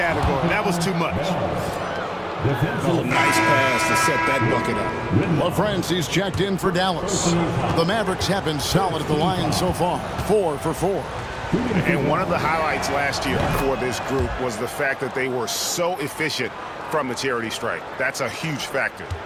That was too much. Oh, nice pass to set that bucket up. LaFrancie's checked in for Dallas. The Mavericks have been solid at the line so far. 4 for 4. And one of the highlights last year for this group was the fact that they were so efficient from the charity stripe. That's a huge factor.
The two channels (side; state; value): both; identical; correlation 1.00